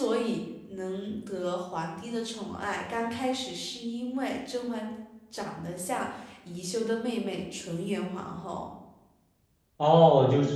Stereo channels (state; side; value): identical; both; correlation 1.00